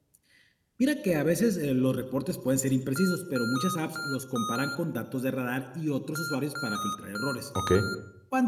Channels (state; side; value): identical; both; correlation 1.00